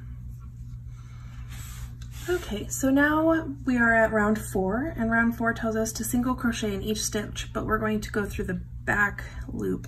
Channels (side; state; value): both; identical; correlation 1.00